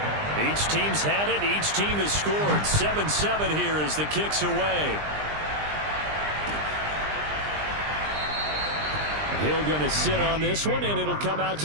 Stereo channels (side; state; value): left; late; 20 ms